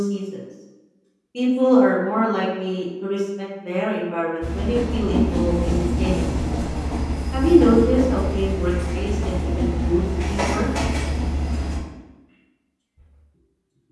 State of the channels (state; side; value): identical; both; correlation 1.00